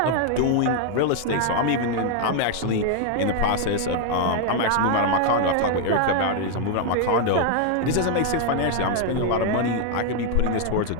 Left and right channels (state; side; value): different; both; correlation 0.01